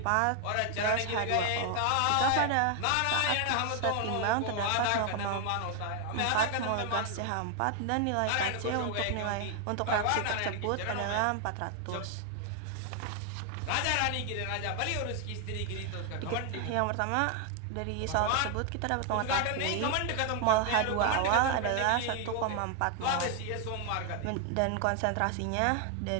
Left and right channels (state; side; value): different; both; correlation 0.00